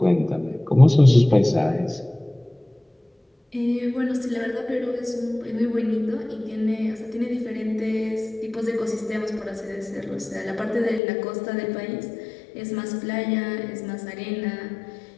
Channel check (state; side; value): drops out; right; at 11.0 s